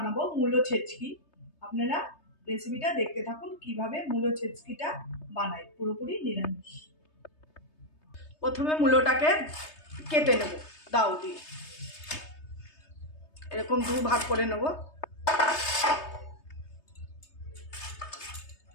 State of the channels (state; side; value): late; right; 3.3 ms